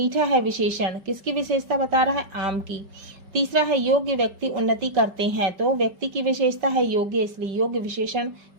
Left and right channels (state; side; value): late; left; 5.2 ms